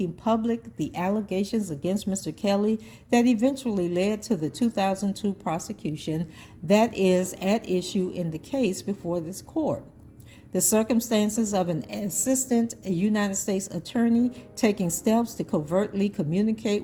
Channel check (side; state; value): both; identical; correlation 1.00